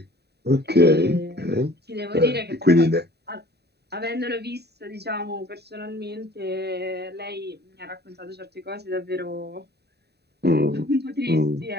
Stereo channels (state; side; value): late; left; 0.48 ms